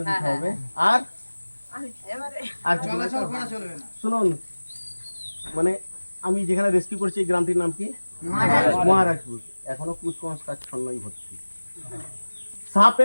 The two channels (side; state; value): both; inverted; correlation -1.00